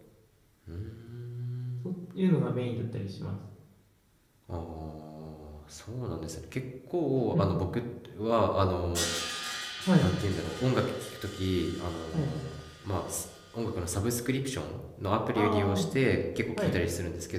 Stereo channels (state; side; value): identical; both; correlation 1.00